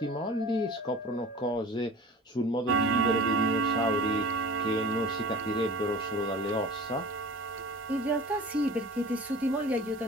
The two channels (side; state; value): both; normal; correlation 0.40